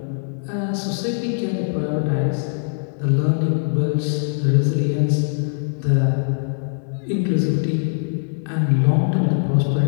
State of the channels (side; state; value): right; silent; digital silence